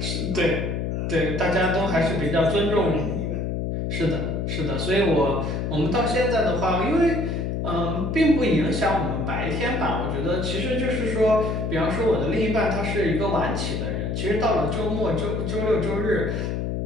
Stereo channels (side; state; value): left; noise; hum, 1 dB below the sound